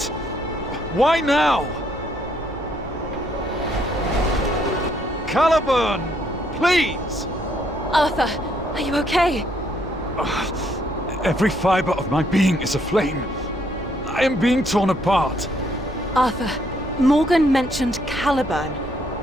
Why now? Caliburn! Please! Arthur, are you okay? Every fiber of my being is aflame. I am being torn apart. Arthur, Morgan mentioned Caliburn.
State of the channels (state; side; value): normal; both; correlation 0.70